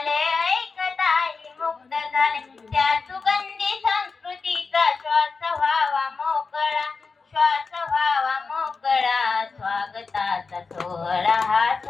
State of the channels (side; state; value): right; quieter; 4.6 dB